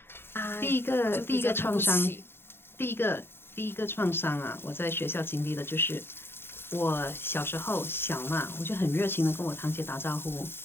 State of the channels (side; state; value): right; late; 0.11 ms